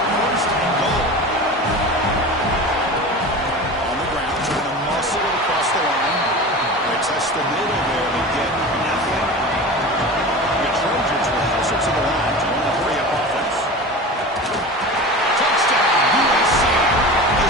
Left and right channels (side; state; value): both; normal; correlation 0.32